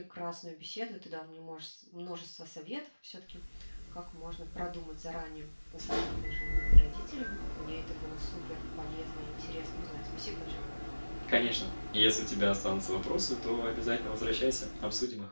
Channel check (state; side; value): inverted; both; correlation -1.00